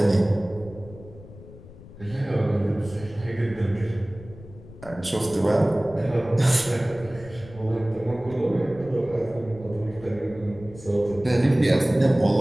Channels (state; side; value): noise; left; rumble, 18 dB below the sound